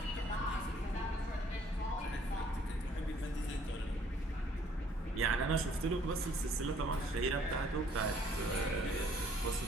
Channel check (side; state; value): both; normal; correlation 0.61